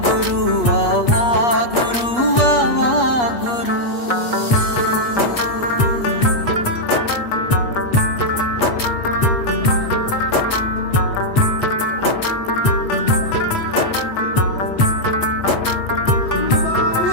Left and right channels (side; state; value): right; late; 8.3 ms